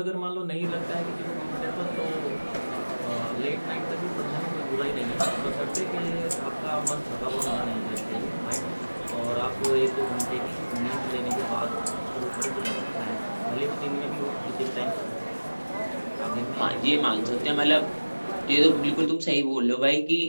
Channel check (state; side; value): inverted; both; correlation -1.00